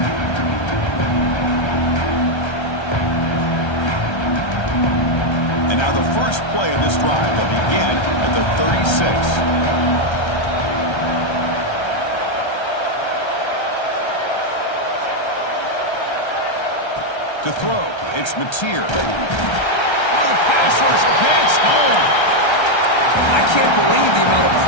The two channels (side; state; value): right; late; 1.3 ms